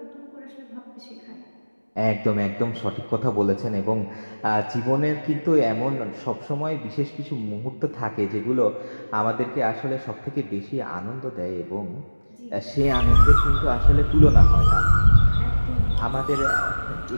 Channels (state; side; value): inverted; both; correlation -1.00